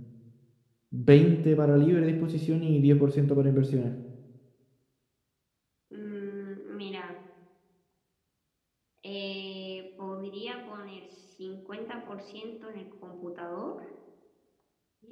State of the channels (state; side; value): identical; both; correlation 1.00